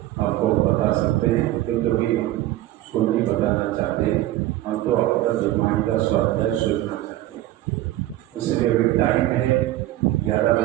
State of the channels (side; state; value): left; quieter; 15.3 dB